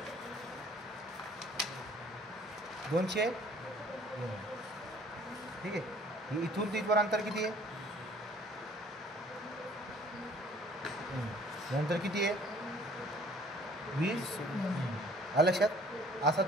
200. ठीक आहे. इथून तिथपर्यंत अंतर किती आहे नंतर किती आहे 20. आलं लक्षात. असा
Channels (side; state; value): both; normal; correlation 0.55